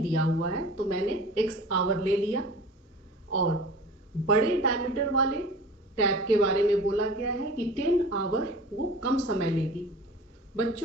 दिया हुआ है तो मैंने x आवर ले लिया, और बड़े डायमीटर वाले टैप के बारे में बोला गया है कि 10 आवर वो कम समय लेगी।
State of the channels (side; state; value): both; normal; correlation 0.40